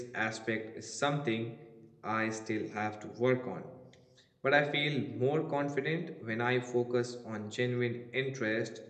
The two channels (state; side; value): identical; both; correlation 1.00